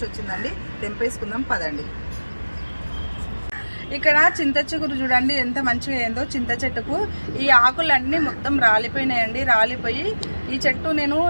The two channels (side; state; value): both; inverted; correlation -1.00